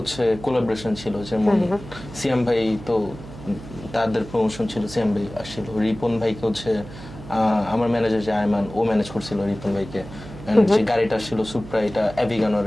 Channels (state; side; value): noise; right; hum, 15 dB below the sound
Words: কোলাবোরেশন ছিল, যেমন সিয়াম ভাই তো তাদের প্রমোশন ছিল, সিয়াম ভাই আসছিল, রিপন ভাইকে হচ্ছে আমার ম্যানেজার যে আয়মান, ও ম্যানেজ করছিল রিপন ভাইকে। এন্ড যে গাড়িটা ছিল সুপ্রা, এটা